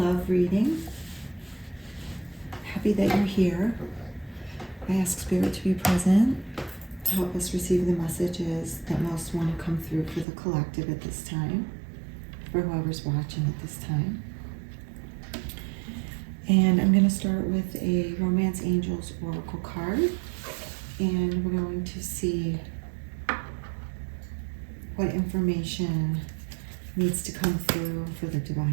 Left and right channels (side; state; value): left; drops out; at 10.2 s